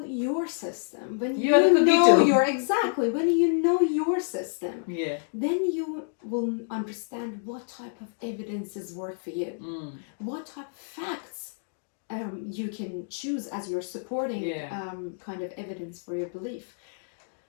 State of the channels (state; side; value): silent; right; digital silence